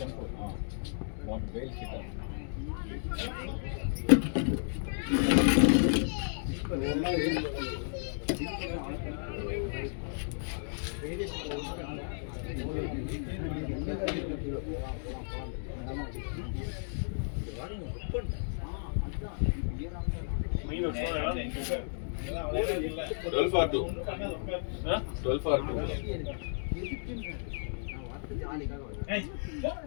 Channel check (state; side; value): silent; right; digital silence